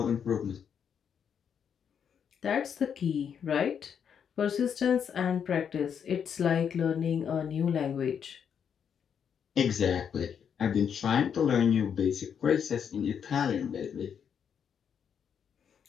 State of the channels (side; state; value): right; quieter; 7.7 dB